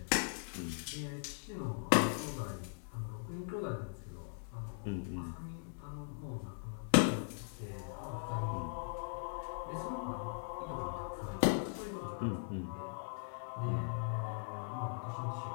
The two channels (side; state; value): right; silent; digital silence